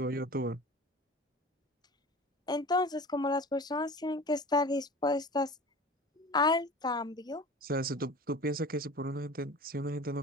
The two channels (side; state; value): both; normal; correlation 0.38